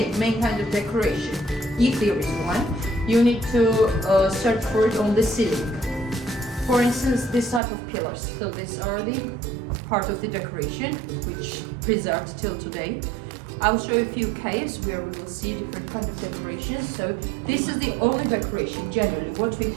kind of decoration, if there is one, you need to search for it on the ceiling. For instance, this type of pillars. So these are the part of the decoration, which preserved till today. I'll show a few caves where we will see different kind of decorations. So this is the only decoration generally what we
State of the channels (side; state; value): left; drops out; at 7.6 s